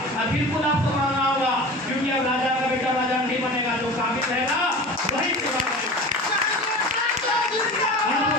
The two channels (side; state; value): both; normal; correlation 0.35